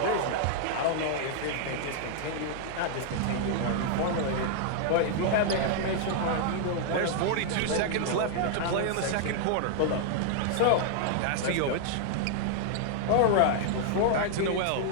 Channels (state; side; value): different; both; correlation 0.00